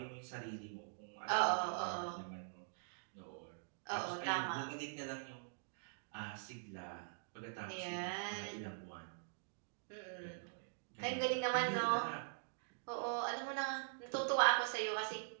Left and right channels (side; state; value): left; silent; digital silence